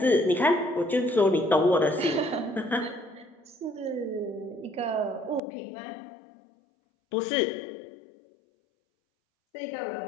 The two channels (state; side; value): drops out; right; at 5.4 s